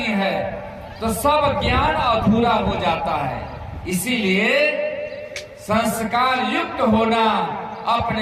है तो सब ज्ञान अधूरा हो जाता है। इसीलिए संस्कार युक्त होना,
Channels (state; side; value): identical; both; correlation 1.00